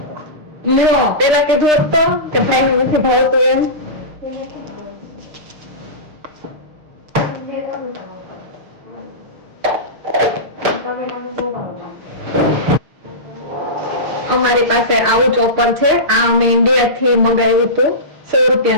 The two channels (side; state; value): left; late; 6.5 ms